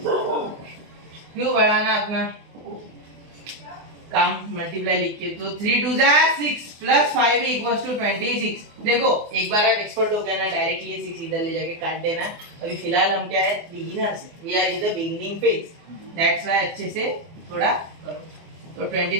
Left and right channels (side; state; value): left; late; 24 ms